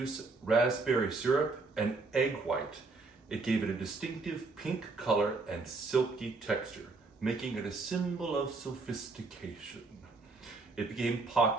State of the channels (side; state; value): left; quieter; 3.8 dB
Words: raspberry syrup, and egg white. It gave it a distinctive pink color and silky texture, making it a symbol of sophistication. It became